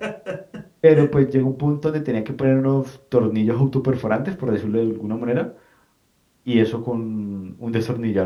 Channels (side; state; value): both; identical; correlation 1.00